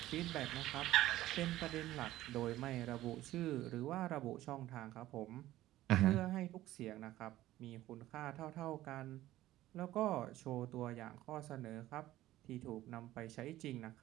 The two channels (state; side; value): quieter; left; 15.1 dB